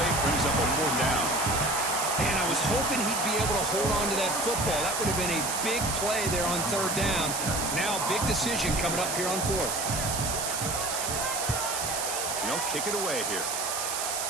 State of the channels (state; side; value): noise; right; hiss, 2 dB below the sound